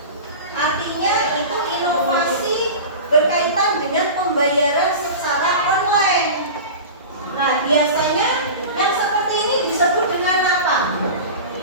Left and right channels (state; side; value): inverted; both; correlation -0.31